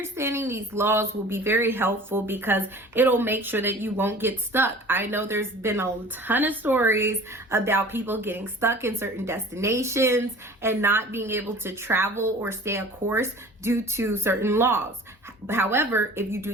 these laws will be very helpful because it'll make sure that you won't get stuck. I know there's been a ton of stories about people getting stuck in certain destinations and not being able to travel or stay a course due to certain laws. However, if you do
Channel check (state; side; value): normal; both; correlation 0.43